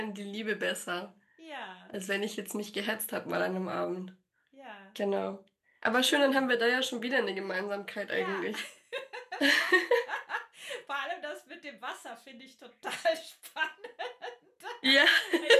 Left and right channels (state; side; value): identical; both; correlation 1.00